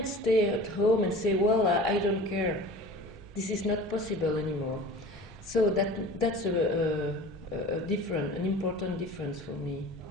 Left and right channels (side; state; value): both; normal; correlation 0.40